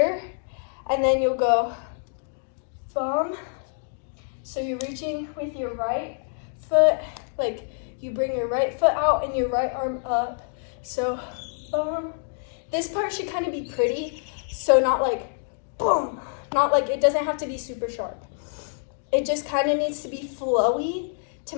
and then you'll go bum. So you're reaching with your right foot, like you bring your right foot out and your right arm up. So bum. This part should kind of be pretty, so not like boom. Not like, it doesn't have to be super sharp. It just kind of needs to be flowy to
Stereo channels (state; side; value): silent; right; digital silence